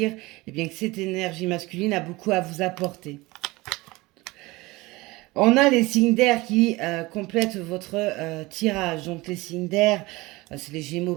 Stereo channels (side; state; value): left; quieter; 21.6 dB